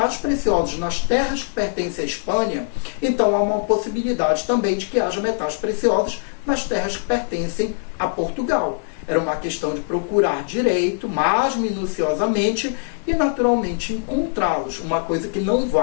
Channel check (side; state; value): right; silent; 64 dB below the other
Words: preciosos nas terras que pertencem à Espanha, então há uma possibilidade também de que haja metais preciosos nas terras que pertencem a Portugal. Era uma questão de procurar direito, mais minuciosamente, e naturalmente encontrá-los. Uma coisa que não